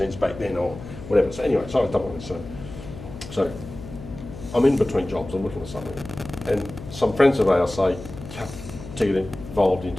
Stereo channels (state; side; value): noise; left; hum, 13 dB below the sound